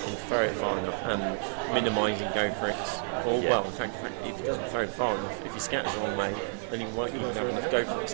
throw it far enough and minimise and go for it. Or well, in fact, if he doesn't throw it far enough, if he scatters the wrong way, then he won't even have enough go for it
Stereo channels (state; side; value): silent; left; 58 dB below the other